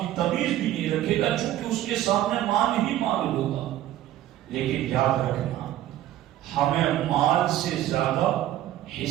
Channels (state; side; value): quieter; left; 13.2 dB